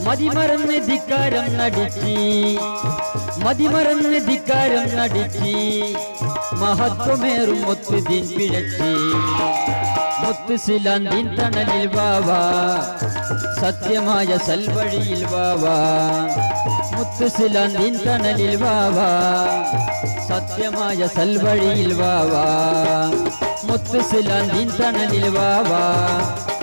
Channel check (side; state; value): both; inverted; correlation -1.00